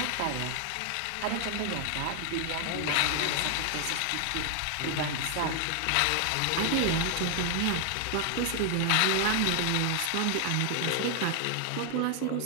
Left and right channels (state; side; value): different; both; correlation 0.00